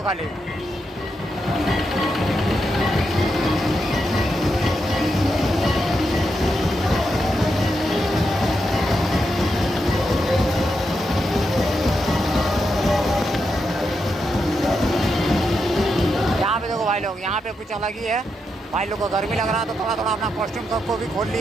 खाली। यहाँ पे देखो भाई लोग, यहाँ पे कुछ अलग ही है। भाई लोग को गर्मी लग रहा है तो थोड़ा थोड़ा अपना कॉस्ट्यूम सबको भी खोल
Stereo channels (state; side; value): normal; both; correlation 0.84